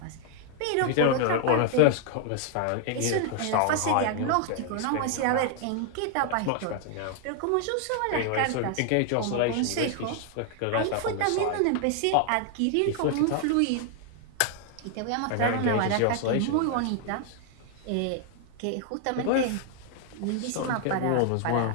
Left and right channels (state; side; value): different; both; correlation 0.00